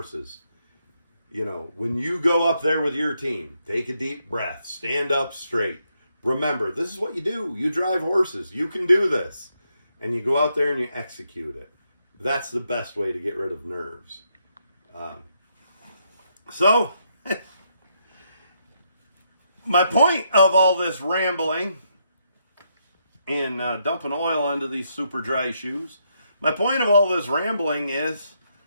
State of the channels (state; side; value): inverted; both; correlation -0.78